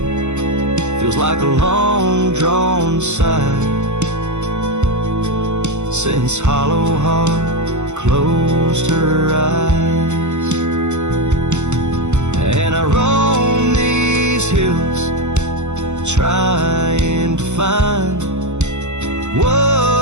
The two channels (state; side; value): late; left; 0.83 ms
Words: feels like a long-drawn sigh, since hollow heart closed her eyes. trying to find